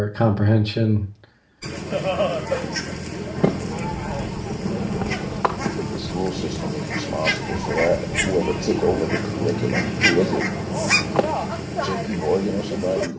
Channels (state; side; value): identical; both; correlation 1.00